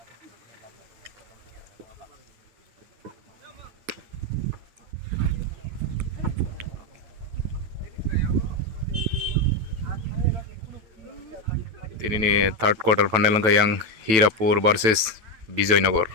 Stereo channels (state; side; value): late; left; 9.2 ms